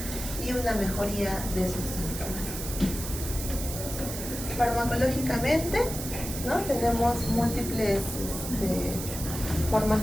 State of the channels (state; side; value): noise; right; hiss, 7 dB below the sound